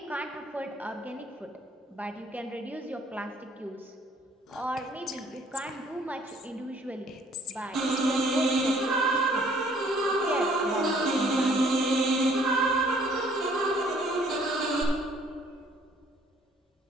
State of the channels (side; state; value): both; normal; correlation 0.60